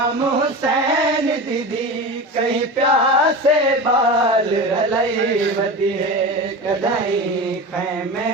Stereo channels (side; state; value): both; normal; correlation 0.28